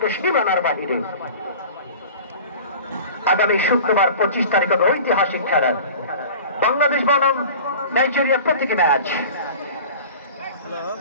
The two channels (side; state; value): both; inverted; correlation -0.40